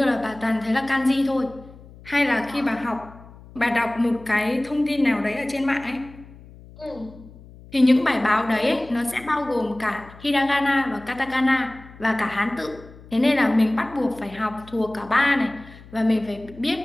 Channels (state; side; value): noise; left; hum, 20 dB below the sound